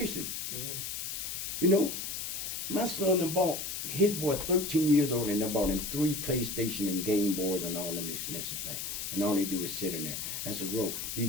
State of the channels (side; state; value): left; noise; hiss, 4 dB below the sound